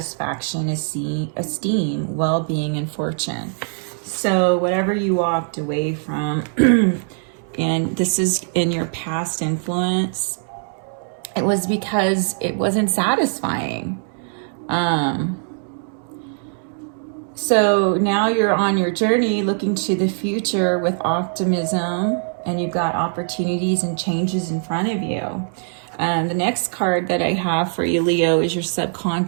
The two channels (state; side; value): silent; left; 59 dB below the other